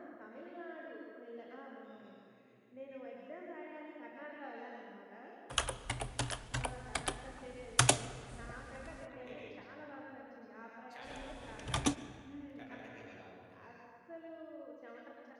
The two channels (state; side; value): identical; both; correlation 1.00